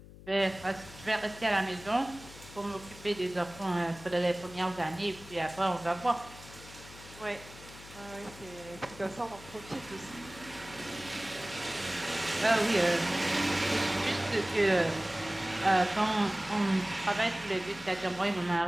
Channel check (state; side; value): noise; left; hum, 18 dB below the sound